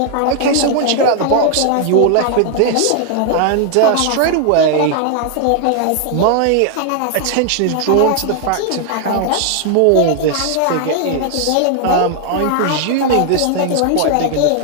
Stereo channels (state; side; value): different; both; correlation 0.00